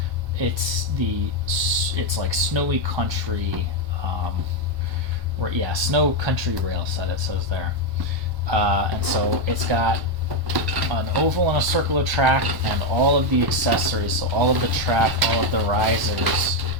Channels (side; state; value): left; late; 1.1 ms